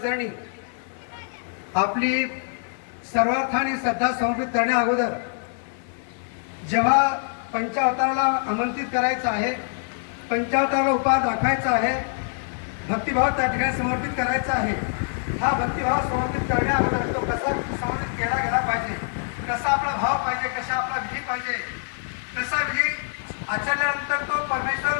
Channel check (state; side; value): silent; right; digital silence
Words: आपली सर्वार्थाने श्रद्धा समर्पित करण्या अगोदर जेव्हा पंचावताराला आमंत्रित करायचं आहे, पंचावताराला उपहार दाखवायचा आहे, भक्तिभाव त्या ठिकाणी समर्पित करायचा आहे, हा भक्तिभाव समर्पित करण्या अगोदर तो कसा समर्पित केला गेला पाहिजे, कसा आपला भाव पाहिजे, कसा आपला विधी पाहिजे, कसा विधी आचरल्यानंतर तो परमेश्वर